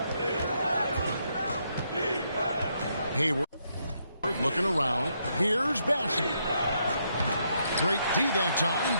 Hayward looking around. Here's Bassett. Great D that time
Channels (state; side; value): inverted; both; correlation -0.77